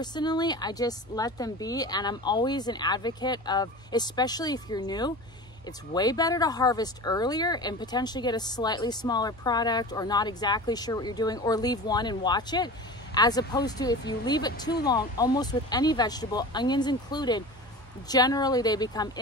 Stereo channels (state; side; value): normal; both; correlation 0.34